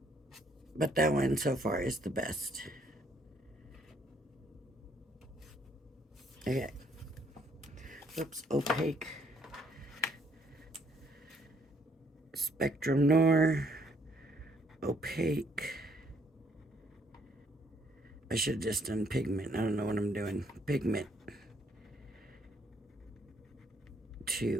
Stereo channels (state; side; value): normal; both; correlation 0.67